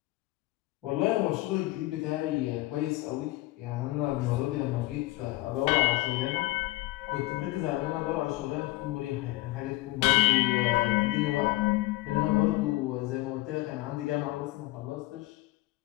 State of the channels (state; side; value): quieter; right; 19.3 dB